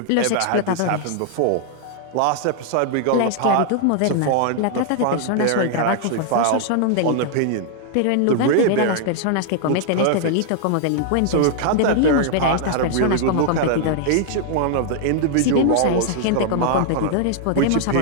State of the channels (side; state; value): both; different; correlation 0.00